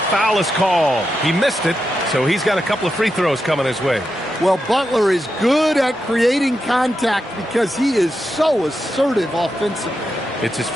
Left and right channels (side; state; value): both; normal; correlation 0.87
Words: is called. He missed it, so he's got a couple of free throws coming his way. Well, Butler is good at creating contact because he is so assertive offensively. It's his